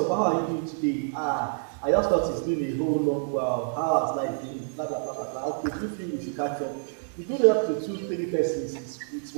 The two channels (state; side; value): silent; left; digital silence